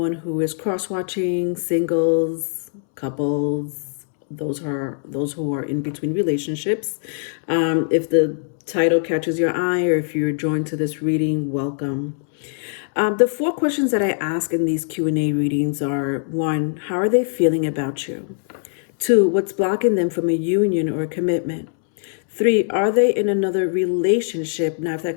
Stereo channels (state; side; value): silent; right; 65 dB below the other